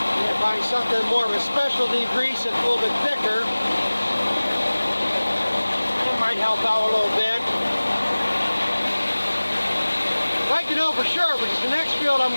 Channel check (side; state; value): both; inverted; correlation -1.00